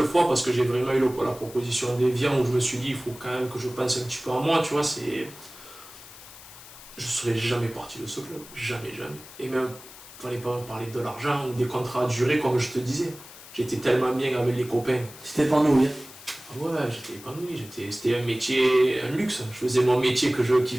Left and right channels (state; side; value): noise; left; hiss, 18 dB below the sound